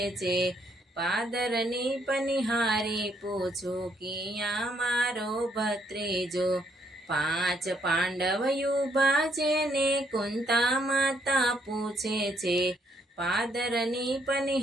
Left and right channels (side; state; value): both; normal; correlation 0.71